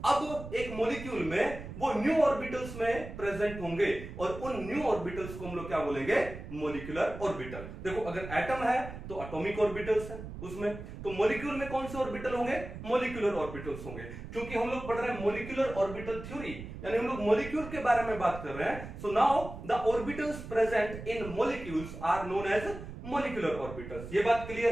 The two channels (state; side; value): noise; right; rumble, 11 dB below the sound